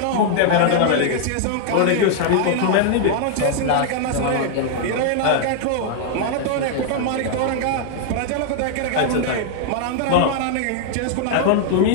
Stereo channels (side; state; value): both; different; correlation -0.01